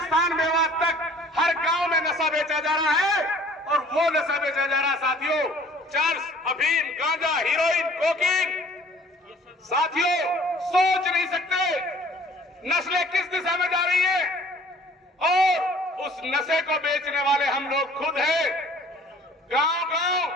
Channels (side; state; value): both; normal; correlation 0.53